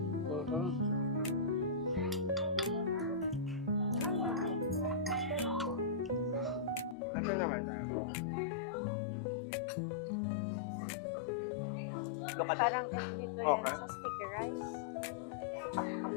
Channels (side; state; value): right; drops out; at 7.0 s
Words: Ito naman tayo. Look at Parang dito yan Okay. sa sticky rice.